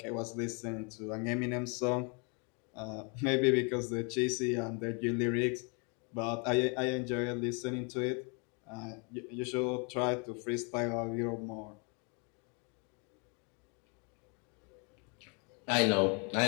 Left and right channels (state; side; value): quieter; right; 34.6 dB